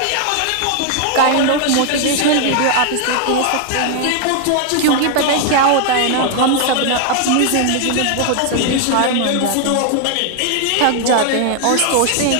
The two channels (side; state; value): both; different; correlation 0.00